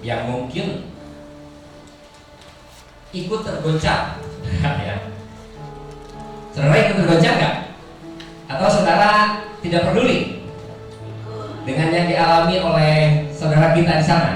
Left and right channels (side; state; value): both; identical; correlation 1.00